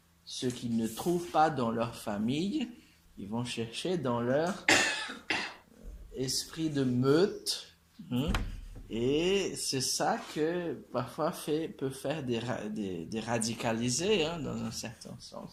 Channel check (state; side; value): identical; both; correlation 1.00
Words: ce qu'ils ne trouvent pas dans leur famille, ils vont chercher dans leur esprit de meute. Et c'est ça que parfois peut faire des radicalisés, dans un certain